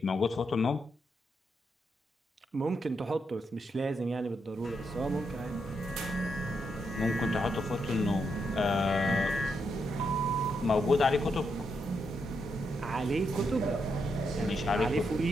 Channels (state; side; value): normal; both; correlation 0.81